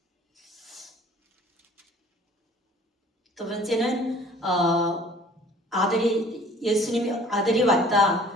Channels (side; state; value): both; normal; correlation 0.51